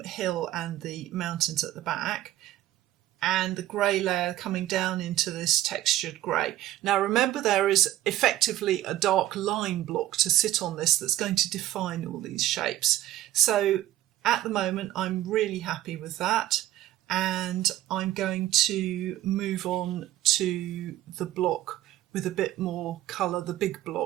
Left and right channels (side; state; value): left; quieter; 14.3 dB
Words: hill and the mountains at the back, and the grey layer coming down into this textured grey. Now remember, there is effectively a dark line block to sit on this that's going to define all these shapes. So at the moment I'm really happy with that, and I'm going to move on to the block with a bit more colour, the big